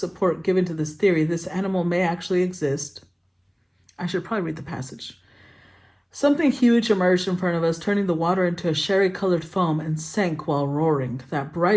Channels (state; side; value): identical; both; correlation 1.00